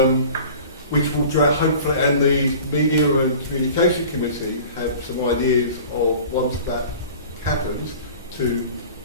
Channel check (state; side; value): inverted; both; correlation -0.42